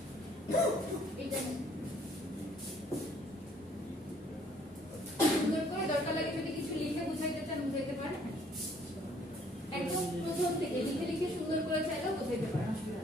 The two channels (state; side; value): normal; both; correlation 0.61